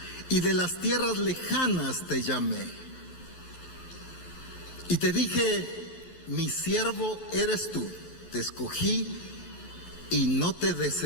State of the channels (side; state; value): right; late; 11 ms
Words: y de las tierras lejanas te llamé, y te dije, mi siervo eres tú, te escogí y no te